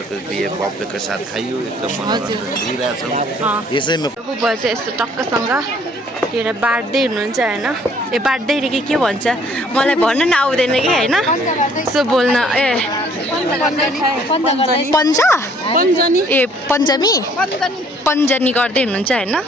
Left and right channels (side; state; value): both; normal; correlation 0.60